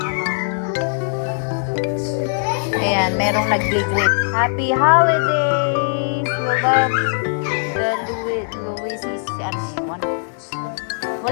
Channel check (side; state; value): right; silent; 63 dB below the other